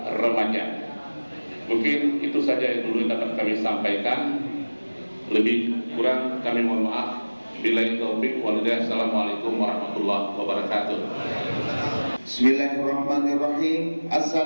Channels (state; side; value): inverted; both; correlation -1.00